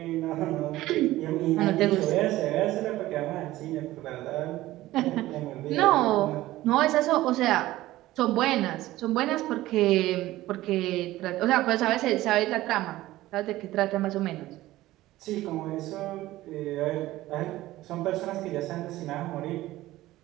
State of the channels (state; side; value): quieter; left; 16.4 dB